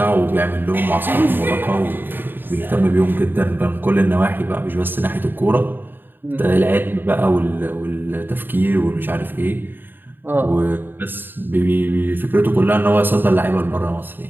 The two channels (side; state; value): left; late; 0.094 ms